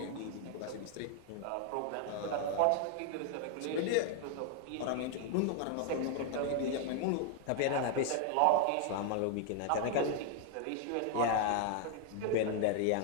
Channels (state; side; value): different; both; correlation 0.00